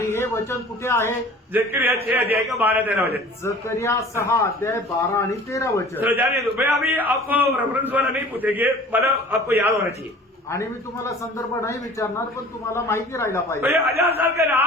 हे वचन कुठे आहे? जकरिया 6 अध्याय का 12-13 वचन। जकरिया 6 अध्याय 12 आणि 13 वचन। चलो जाने दो, मैं अभी आपको रेफरेंस वाला नहीं पूछेंगे, मतलब आपको याद होना चाहिए। आणि मी तुम्हाला संदर्भ नाही विचारणार, पण तुम्हाला माहिती राहायला तो पाहिजे। ये 1000 साल का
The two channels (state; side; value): normal; both; correlation 0.45